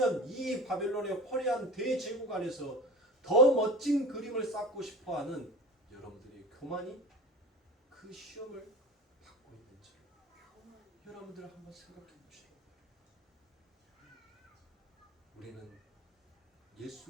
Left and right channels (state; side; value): normal; both; correlation 0.34